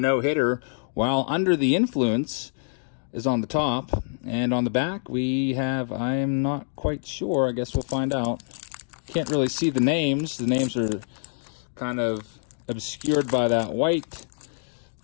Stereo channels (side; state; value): right; silent; digital silence